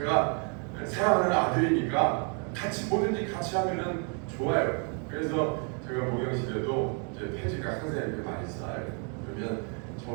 사랑하는 아들이니까 같이 뭐든지 같이 하면은 좋아요. 그래서 제가 목욕실에도 이제 폐지가 항상 이렇게 많이 쌓여요. 그러면 저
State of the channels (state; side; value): quieter; left; 39.2 dB